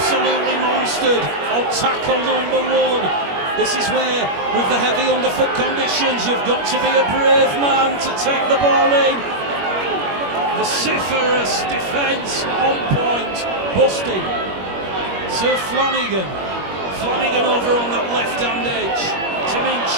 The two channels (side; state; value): left; late; 21 ms